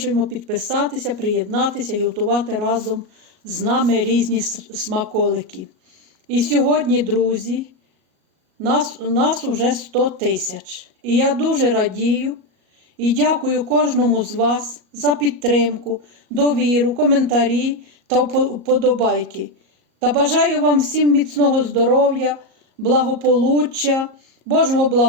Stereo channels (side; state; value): left; late; 37 ms